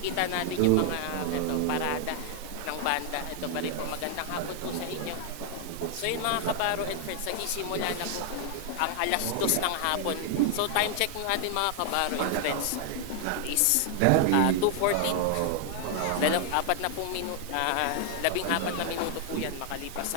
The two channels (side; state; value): both; different; correlation 0.00